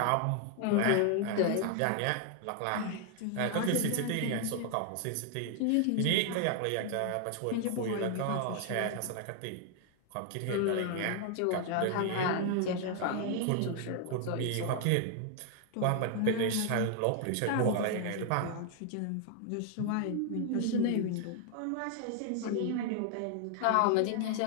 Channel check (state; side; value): different; both; correlation 0.00